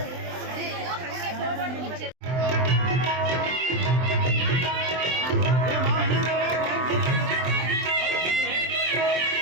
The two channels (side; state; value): left; late; 23 ms